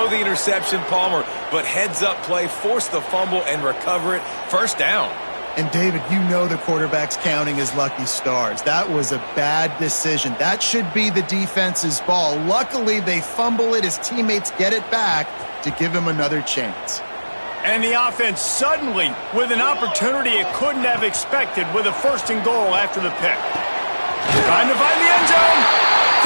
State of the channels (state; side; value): inverted; both; correlation -1.00